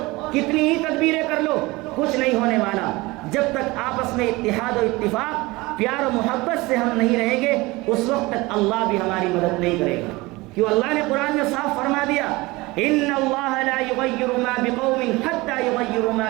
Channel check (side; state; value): left; quieter; 22.0 dB